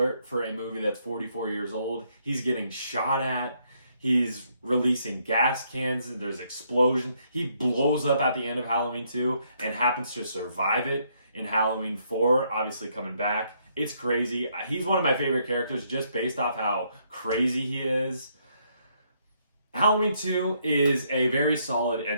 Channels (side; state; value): both; inverted; correlation -0.72